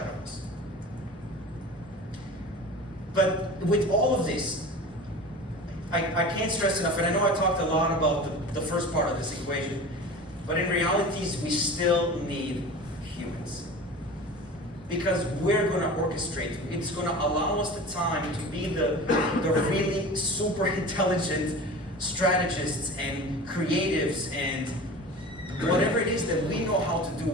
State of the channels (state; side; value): normal; both; correlation 0.36